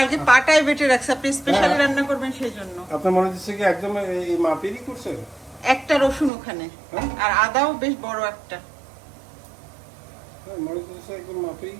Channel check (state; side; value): drops out; left; at 6.3 s